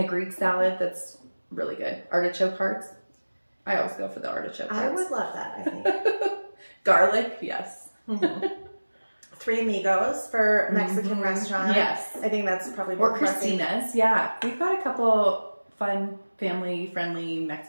Greek salad that's really good. Artichoke hearts. I always go for the artichoke hearts. I would love that, I think. Garlic, yes. Three Amigos for Mexican restaurant. Yes. I think that's probably or Christina's. Yeah. We've got a couple fun, family-friendly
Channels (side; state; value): both; inverted; correlation -1.00